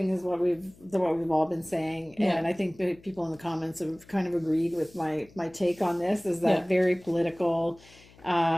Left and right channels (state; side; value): noise; left; hum, 25 dB below the sound